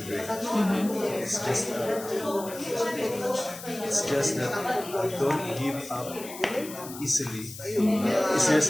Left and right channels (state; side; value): noise; left; hiss, 13 dB below the sound